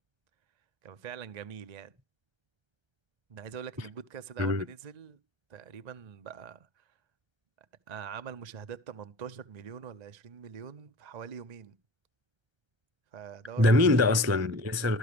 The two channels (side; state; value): left; late; 1.3 ms